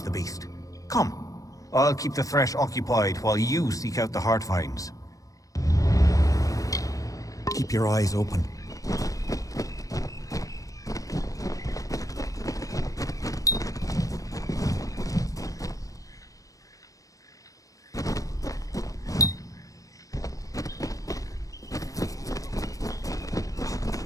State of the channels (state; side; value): late; right; 0.17 ms